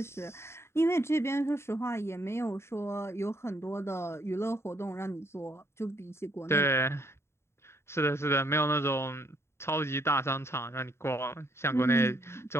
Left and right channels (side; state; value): right; late; 0.13 ms